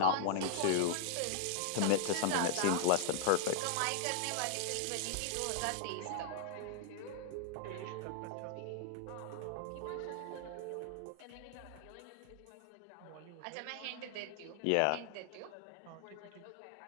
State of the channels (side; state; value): both; different; correlation -0.01